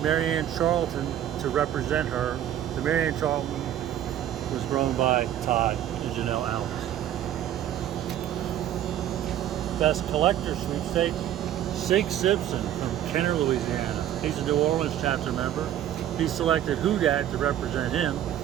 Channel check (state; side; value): quieter; left; 11.4 dB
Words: Marianne Charlton to represent her. The Marianne Charlton was grown by Todd and Janelle Alvis. Best Collector Sweepstakes, Sig Simpson from Kenner, Louisiana. He's a New Orleans chapter member. He selected Who Dat to represent him.